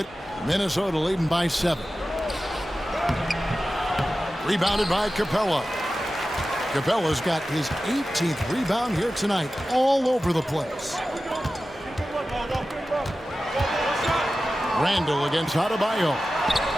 Minnesota leading by 7. Rebounded by Capella. Capella's got his 18th rebound here tonight, all over the place. Randall against Adebayo.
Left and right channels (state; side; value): normal; both; correlation 0.94